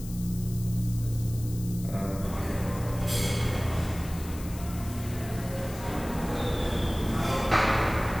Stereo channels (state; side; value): noise; left; hiss, 16 dB below the sound